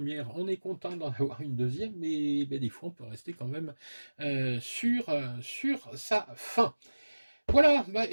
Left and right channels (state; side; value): inverted; both; correlation -1.00